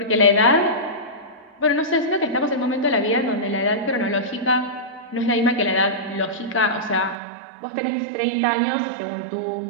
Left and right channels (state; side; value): drops out; left; at 7.2 s